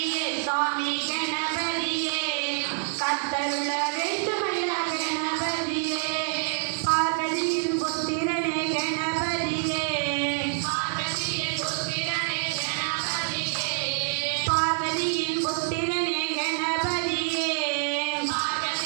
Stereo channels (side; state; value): left; silent; digital silence